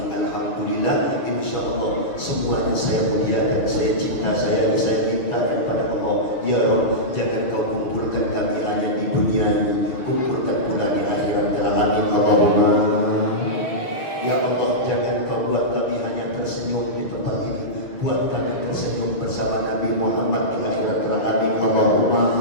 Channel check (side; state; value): right; late; 7.0 ms